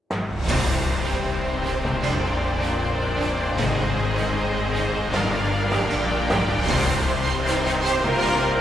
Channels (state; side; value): normal; both; correlation 0.83